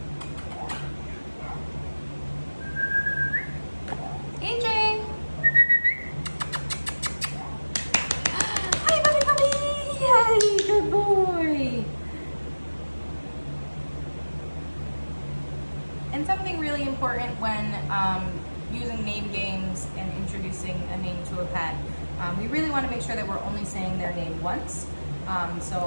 AJ! Hi, puppy puppy! Yay, good boy! And something really important when using name games and introducing a name to a pet, we really want to make sure that we're only saying their name once.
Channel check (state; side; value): inverted; both; correlation -1.00